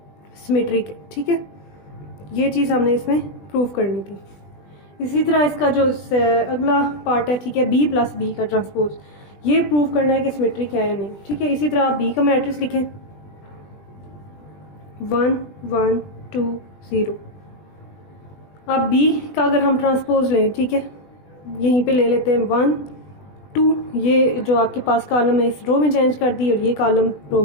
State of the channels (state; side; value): late; right; 20 ms